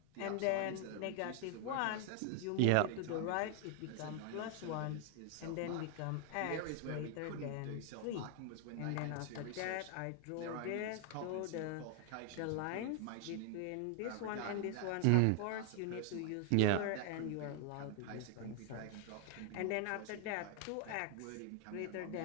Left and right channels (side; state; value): both; different; correlation 0.00